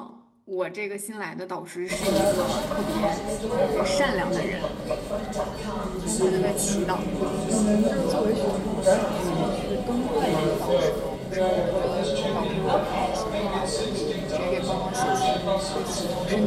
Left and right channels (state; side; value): identical; both; correlation 1.00